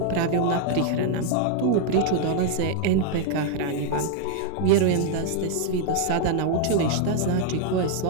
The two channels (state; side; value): different; both; correlation 0.00